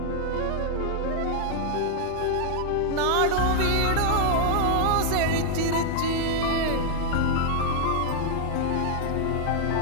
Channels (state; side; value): different; both; correlation 0.00